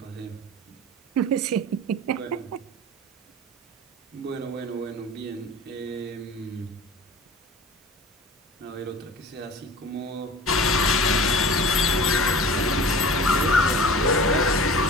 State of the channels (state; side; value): normal; both; correlation 0.40